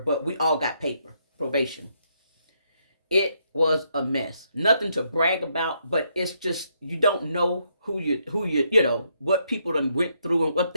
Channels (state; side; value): inverted; both; correlation -0.76